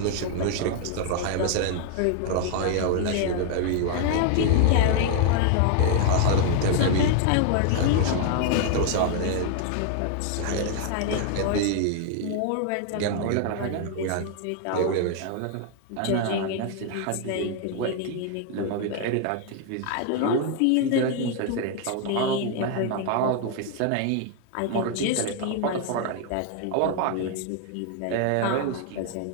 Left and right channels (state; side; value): different; both; correlation 0.00